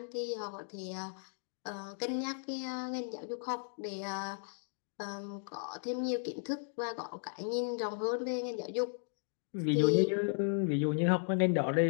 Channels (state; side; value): silent; right; 54 dB below the other